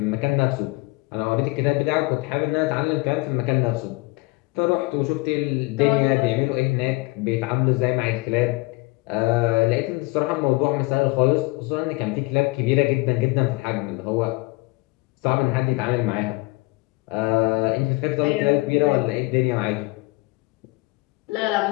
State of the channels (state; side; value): quieter; right; 24.0 dB